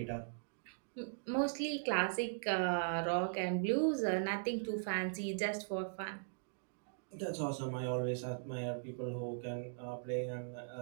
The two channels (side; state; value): left; silent; digital silence